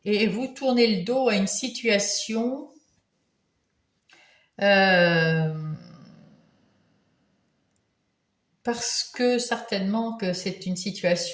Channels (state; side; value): identical; both; correlation 1.00